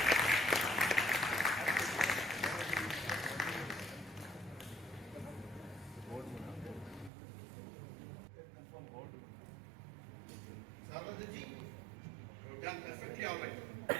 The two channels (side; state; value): left; drops out; at 7.1 s